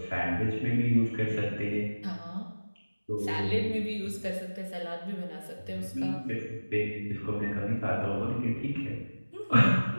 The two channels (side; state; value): both; inverted; correlation -1.00